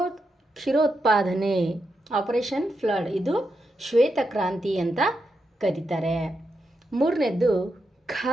ಆಪರೇಷನ್ ಫ್ಲಡ್, ಇದು ಶ್ವೇತ ಕ್ರಾಂತಿ ಅಂತ ಕರೀತಾರೆ. ಮೂರನೇದ್ದು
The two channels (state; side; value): normal; both; correlation 0.85